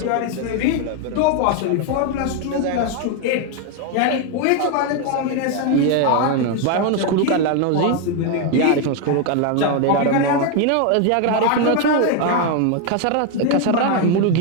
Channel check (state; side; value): different; both; correlation 0.01